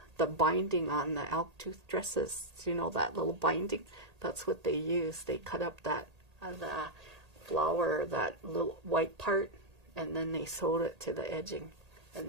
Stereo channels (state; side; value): late; left; 1.8 ms